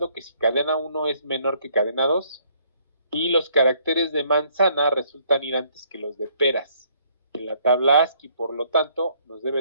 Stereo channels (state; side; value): inverted; both; correlation -0.65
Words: que si cadena 1 es menor que cadena 2 y los caracteres de manzana resultan ir antes que los de peras en la tabla ASCII, por lo tanto nos